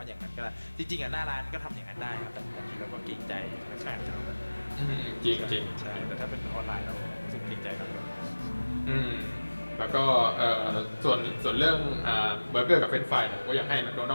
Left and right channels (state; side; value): inverted; both; correlation -1.00